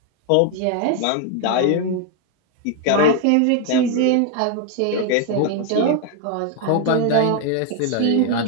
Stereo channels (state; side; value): different; both; correlation 0.00